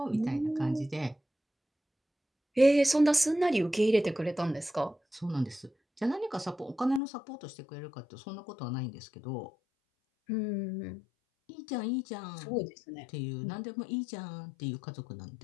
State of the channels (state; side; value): drops out; right; at 7.0 s